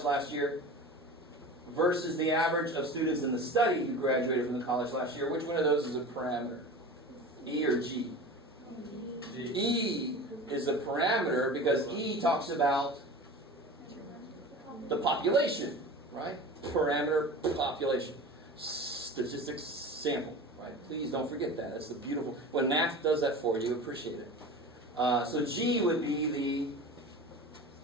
last year versus the average of students in the study who graduated from the college last year, which one of those is a parameter? E or G? G. E is a parameter because E talks about the population, right? Parameter, population. Statistics, sample, right? Please don't forget that. That's the beautiful. When math does that for you, appreciate it. So G would be the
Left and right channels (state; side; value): normal; both; correlation 0.34